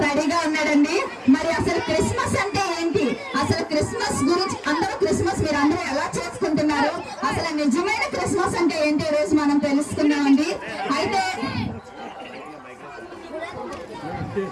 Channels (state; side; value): identical; both; correlation 1.00